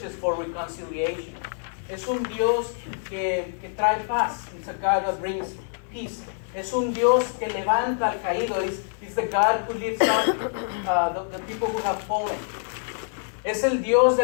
for reconciliation. Es un Dios que trae paz. It's a God that brings peace. Es un Dios que levanta al caído. It's the God who lifts up the people who have fallen. Es el Dios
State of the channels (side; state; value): right; silent; 60 dB below the other